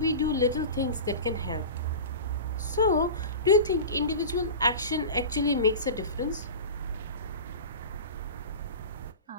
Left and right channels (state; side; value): inverted; both; correlation -0.31